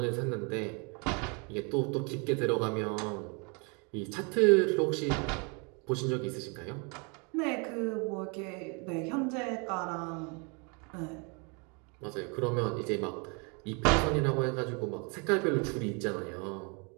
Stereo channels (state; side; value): quieter; left; 33.6 dB